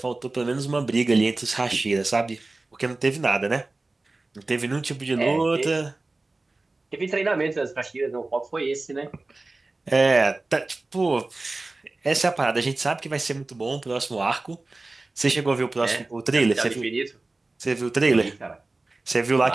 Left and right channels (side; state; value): left; quieter; 3.2 dB